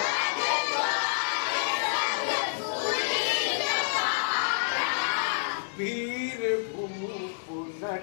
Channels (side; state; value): right; silent; digital silence